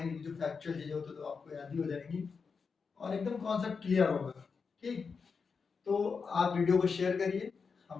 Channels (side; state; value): right; quieter; 5.3 dB